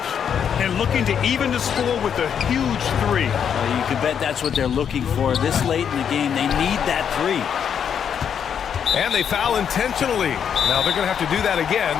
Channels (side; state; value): right; quieter; 8.0 dB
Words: And looking to even the score with a huge three. You can bet that's what they're looking for. This late in the game, they need that three. And they foul intentionally. Now they're going to have to do that again.